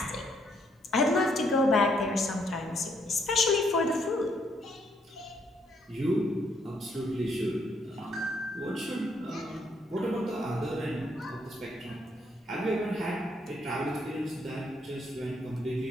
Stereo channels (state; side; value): normal; both; correlation 0.72